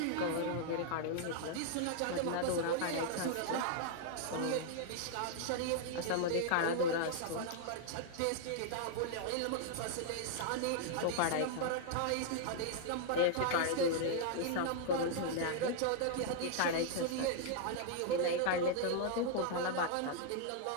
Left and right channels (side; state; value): both; different; correlation -0.01